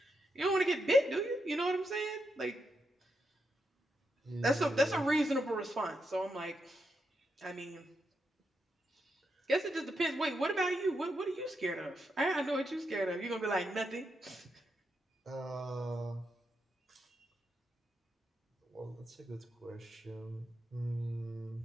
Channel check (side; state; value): both; normal; correlation 0.83